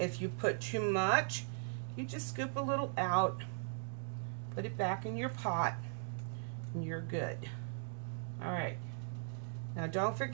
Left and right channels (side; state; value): left; silent; digital silence